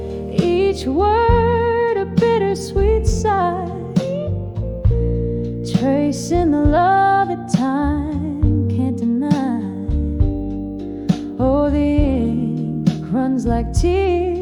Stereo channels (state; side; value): identical; both; correlation 1.00